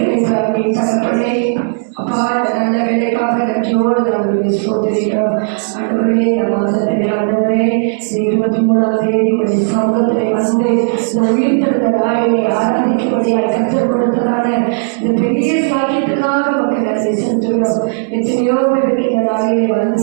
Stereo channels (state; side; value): silent; left; digital silence